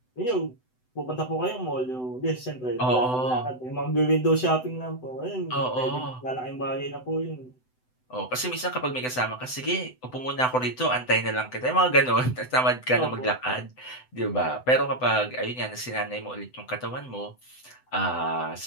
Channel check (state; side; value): late; right; 7.9 ms